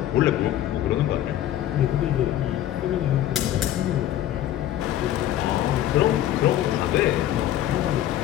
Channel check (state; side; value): quieter; right; 12.3 dB